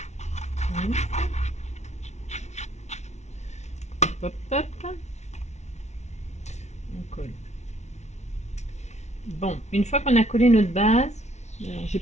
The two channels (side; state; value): right; late; 0.32 ms